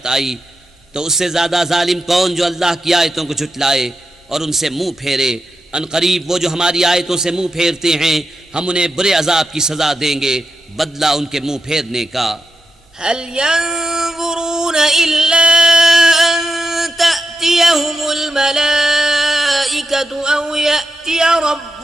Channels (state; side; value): normal; both; correlation 0.87